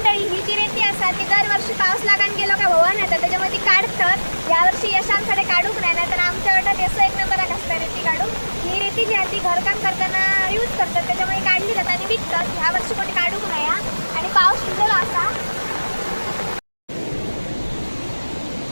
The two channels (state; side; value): inverted; both; correlation -1.00